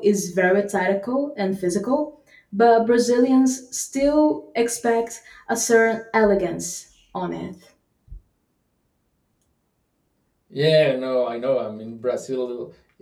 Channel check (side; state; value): both; identical; correlation 1.00